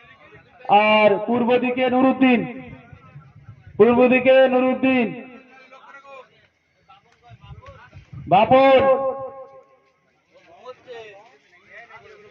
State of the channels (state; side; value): identical; both; correlation 1.00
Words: আর পূর্ব দিকে নুরুদ্দিন, বাপর।